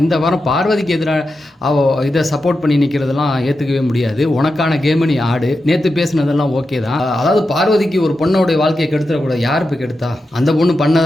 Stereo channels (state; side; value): normal; both; correlation 0.89